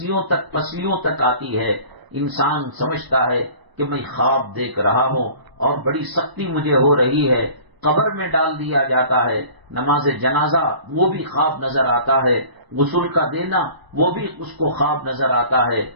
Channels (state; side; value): late; left; 1.0 ms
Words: تک پسلیوں تک آتی ہے. انسان سمجھتا ہے کہ میں خواب دیکھ رہا ہوں اور بڑی سختی مجھے ہو رہی ہے. قبر میں ڈال دیا جاتا ہے. نماز جنازہ وہ بھی خواب نظر آتا ہے، غسل کا دینا وہ بھی اس کو خواب نظر آتا ہے.